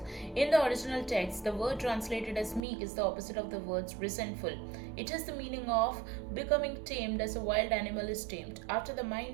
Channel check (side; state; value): left; drops out; at 2.7 s